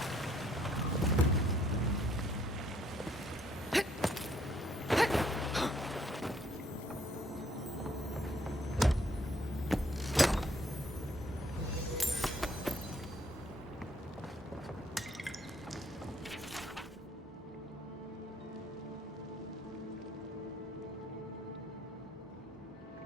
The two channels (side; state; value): both; normal; correlation 0.66